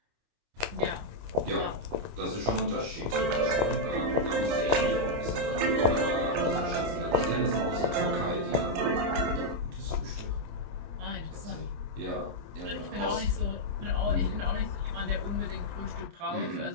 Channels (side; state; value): left; late; 28 ms